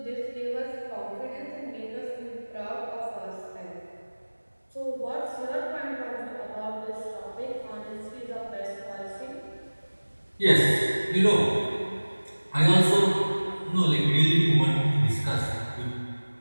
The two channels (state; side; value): inverted; both; correlation -1.00